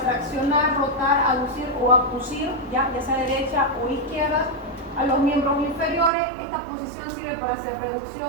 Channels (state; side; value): drops out; left; at 6.1 s